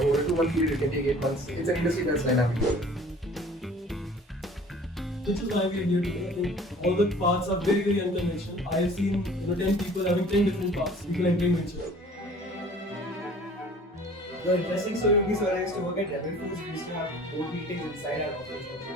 a 2-month period. It can take 8 months. It's an industry that's dynamic. Which is why we are here today. I think all the paths are very, very unconventional. I have seen 10 people having 10 different paths. People entering venture. The interesting story would be, so I used to work at Rebel Foods. We used to have board meetings inside our office.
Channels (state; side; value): normal; both; correlation 0.49